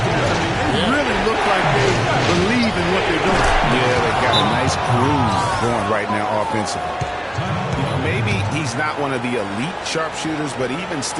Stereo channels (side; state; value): both; identical; correlation 1.00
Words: I mean, they really look like they believe in what they're doing. Yeah, they've got a nice groove going right now offensively. Maybe he's not one of the elite sharpshooters, but even